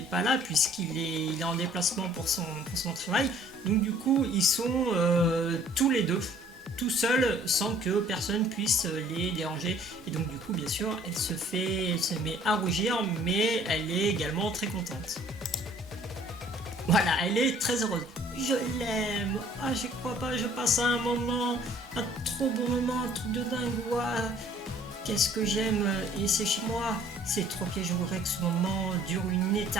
pas là, il est en déplacement pour son travail, donc du coup, ils sont tous les deux tout seul sans que personne puisse les déranger, et donc du coup bien sûr elle se met à rougir, mais elle est également très contente. Voilà, elle est très heureuse. Je l'aime, ah je crois pas, je passe un trop bon moment, un truc de dingue, ouah, qu'est-ce que j'aime, et c'est chez moi, c'est trop que je voudrais que ce moment dure une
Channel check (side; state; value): both; normal; correlation 0.56